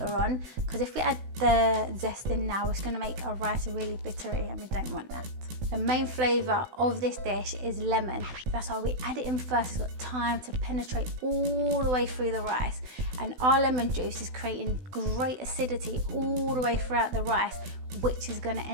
on, because if we add the zest in now, it's going to make our rice really bittery and we don't want that. The main flavour of this dish is lemon. That's why we add it in first. It's got time to penetrate all the way through the rice, and our lemon juice is creating great acidity all the way throughout the rice, which is going to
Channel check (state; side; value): late; left; 16 ms